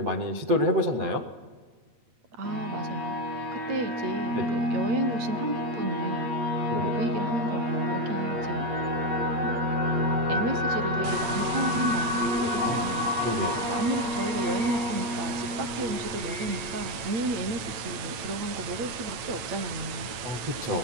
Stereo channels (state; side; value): late; left; 9.0 ms